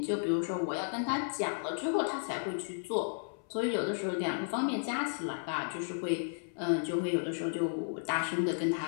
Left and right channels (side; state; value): right; silent; 55 dB below the other